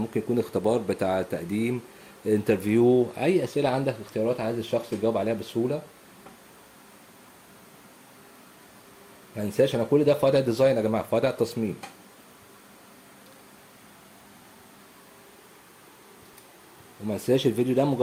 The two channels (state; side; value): identical; both; correlation 1.00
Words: يكون اختبار بتاع تقديم، انترفيو، اي اسئلة عندك اختيارات عايز الشخص يجاوب عليها بسهولة. ما ننساش انا كل ده في وضع ديزاين يا جماعة، في وضع تصميم. وما ننساش الفيديو ده